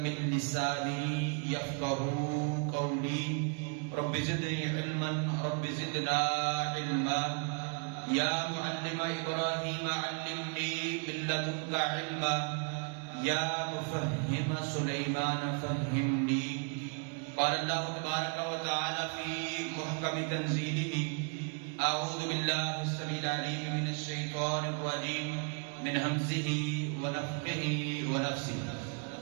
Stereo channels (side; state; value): left; quieter; 37.6 dB